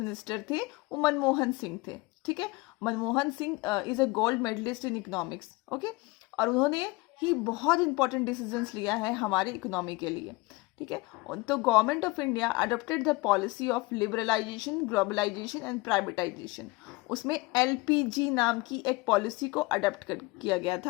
थे वो मनमोहन सिंह थे। ठीक है, Manmohan Singh is a gold medalist in economics. Okay, और उन्होंने ही बहुत इंपॉर्टेंट डिसीजंस लिया है हमारी इकोनॉमी के लिए। ठीक है, तो government of India adopted the policy of liberalisation, globalisation and privatisation. उसमें एलपीजी नाम की एक पॉलिसी को अडॉप्ट किया गया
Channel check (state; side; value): quieter; right; 23.5 dB